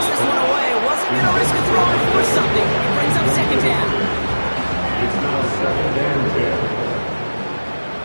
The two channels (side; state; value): both; inverted; correlation -1.00